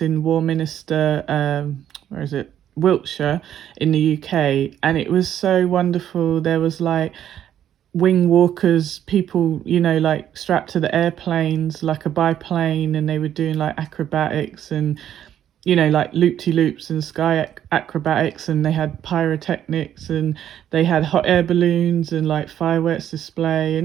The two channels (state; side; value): quieter; left; 10.5 dB